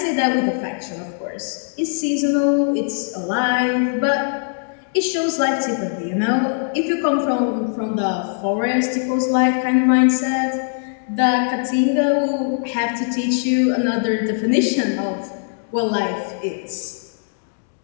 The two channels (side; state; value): right; silent; 65 dB below the other